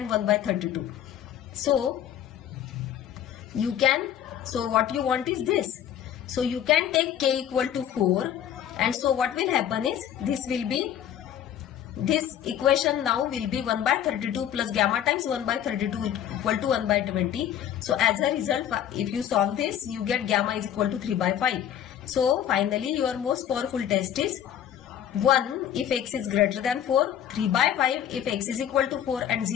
1 by 32. So you can, so what you want is this. So you can take k equal to 4, and so what will happen is this will be, this equation now will be 1 by 32 plus gamma times 1 by 32 equal to 1 by 20. So as a result, if you solve this, you get gamma is equal to 3 by 5. So finally your most powerful test is 1 if x is greater than 4, 3 by 5 if x is equal to 4, and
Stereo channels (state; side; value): quieter; right; 10.2 dB